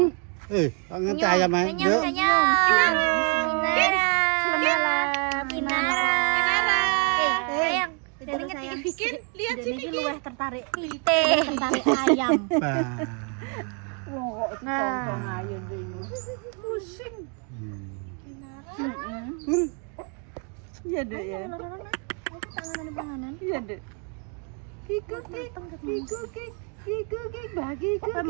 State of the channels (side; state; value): left; quieter; 38.7 dB